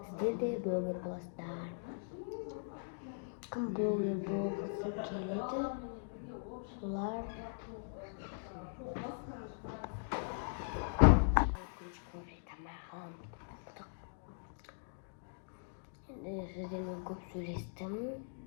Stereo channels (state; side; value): silent; right; digital silence